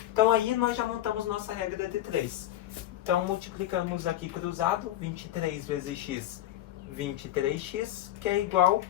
Então aí nós já montamos nossa regra de 3. Então multiplicamos aqui cruzado, 23 vezes x, 23x, que é igual,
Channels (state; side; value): quieter; right; 13.7 dB